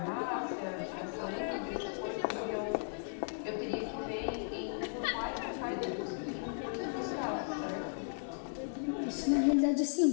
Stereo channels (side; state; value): right; silent; digital silence